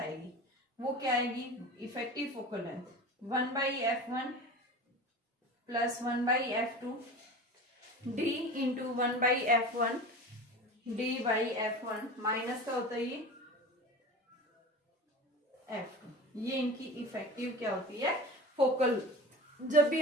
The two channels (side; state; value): both; normal; correlation 0.34